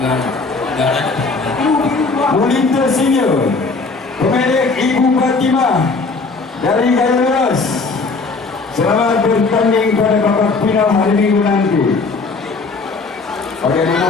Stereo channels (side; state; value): right; quieter; 4.1 dB